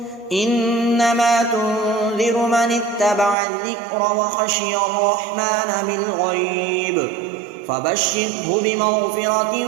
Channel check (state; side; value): drops out; left; at 3.4 s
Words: إنما تنذر من اتبع الذكر وخشي الرحمن بالغيب فبشره بمغفرة